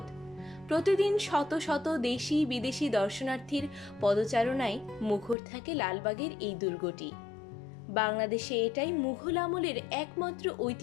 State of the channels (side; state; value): right; drops out; at 5.4 s